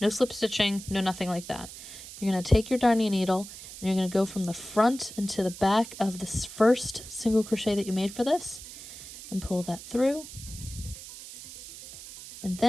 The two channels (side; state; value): right; noise; hiss, 14 dB below the sound